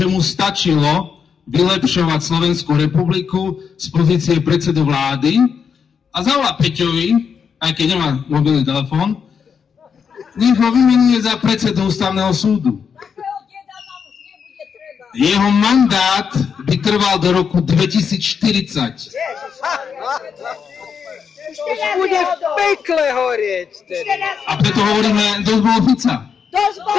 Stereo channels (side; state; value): right; quieter; 6.6 dB